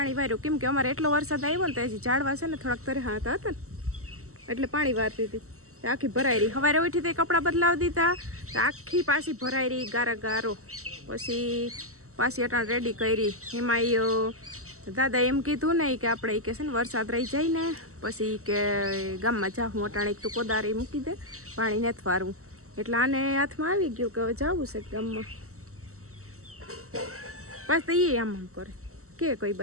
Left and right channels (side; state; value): left; late; 0.64 ms